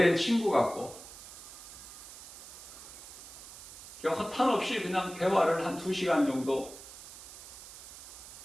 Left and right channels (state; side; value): noise; right; hiss, 15 dB below the sound